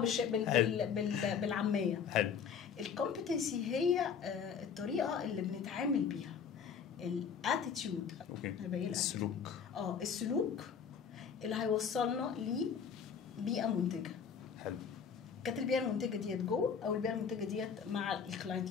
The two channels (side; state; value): right; quieter; 6.9 dB